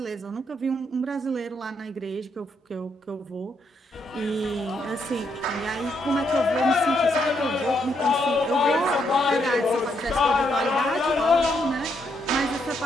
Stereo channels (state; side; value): normal; both; correlation 0.76